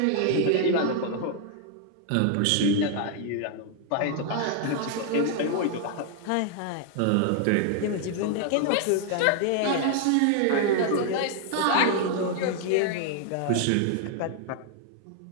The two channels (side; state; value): both; different; correlation 0.00